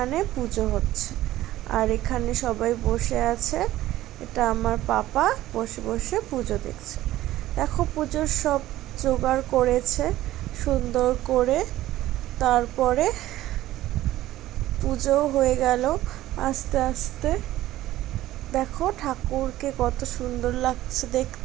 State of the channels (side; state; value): left; quieter; 15.1 dB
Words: পুজো হচ্ছে। আর এখানে সবাই বসে আছে। এটা আমার পাপা বসে বসে পুজো দেখছে। দেখো পুজোর সব জোগাড় করেছে সুন্দর করে। তারপরে পুজো হয়ে গেল আস্তে আস্তে। দেখো ঠাকুরকে কত সুন্দর লাগছে